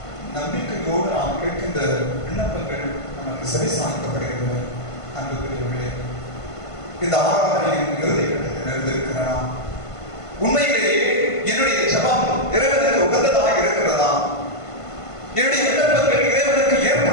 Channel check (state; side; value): late; right; 1.5 ms